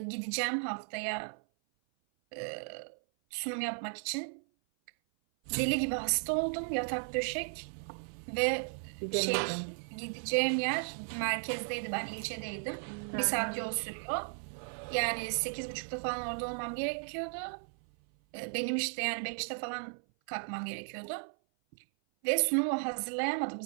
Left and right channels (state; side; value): silent; left; 54 dB below the other